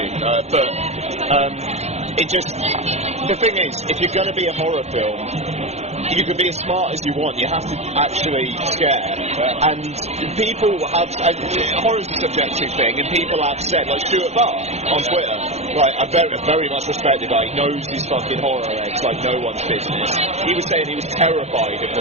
but it just, the thing is, if you're going to be a horror film, you can be as smart as you want, you have to actually scare. And people have, horror's a subjective thing, and people have said, like Stuart Barr on Twitter, like, a very much respected guy, he knows his fucking horror eggs like no one's business. He was saying he was terrified of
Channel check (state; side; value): late; left; 0.31 ms